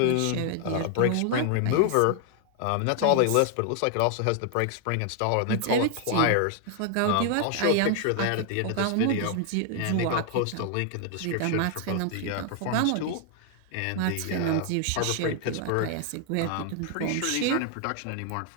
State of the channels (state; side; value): different; both; correlation 0.00